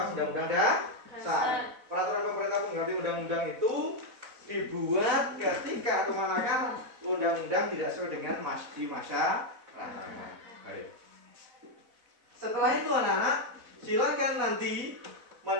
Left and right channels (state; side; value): late; left; 4.0 ms